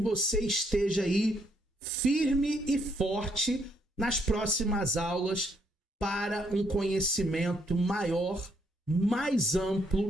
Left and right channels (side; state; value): both; normal; correlation 0.72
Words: esteja aí firme e forte nas próximas aulas para um conhecimento maior, mais